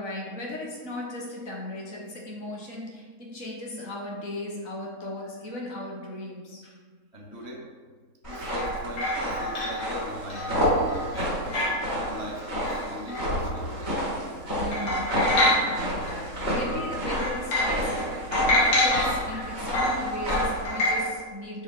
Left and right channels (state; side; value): late; right; 3.7 ms